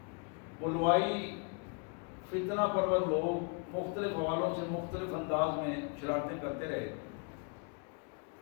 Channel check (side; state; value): right; quieter; 36.3 dB